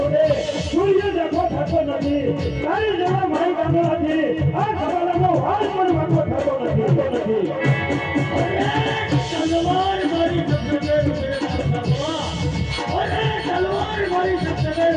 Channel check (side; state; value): both; identical; correlation 1.00